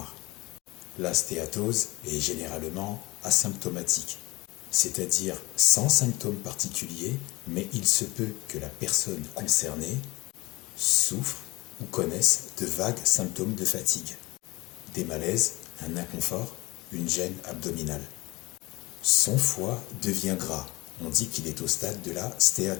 La stéatose est généralement asymptomatique, c'est-à-dire sans symptômes particuliers, mais il se peut que la personne concernée souffre ou connaisse de vagues symptômes de fatigue, des malaises, un inconfort, une gêne abdominale. Son foie devient gras, on dit qu'il est au stade de la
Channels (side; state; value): right; quieter; 21.9 dB